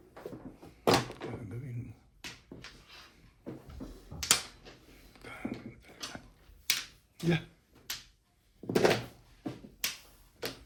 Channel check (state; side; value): identical; both; correlation 1.00